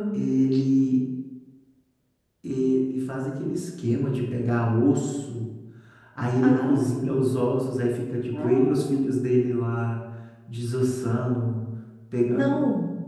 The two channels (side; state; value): both; identical; correlation 1.00